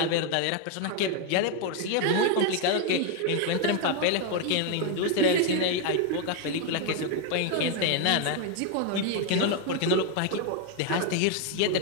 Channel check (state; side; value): different; both; correlation 0.01